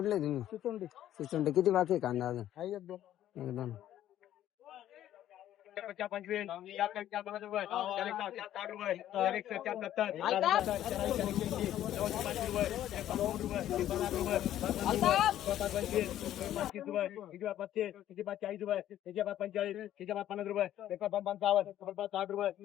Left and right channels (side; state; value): right; quieter; 12.2 dB